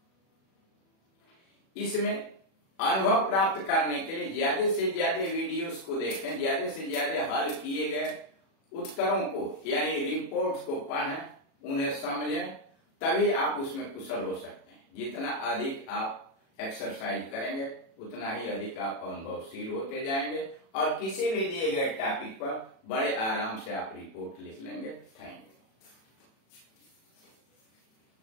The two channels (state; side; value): late; right; 36 ms